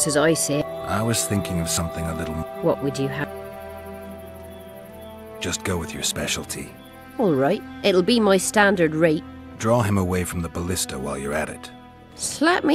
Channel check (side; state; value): both; identical; correlation 1.00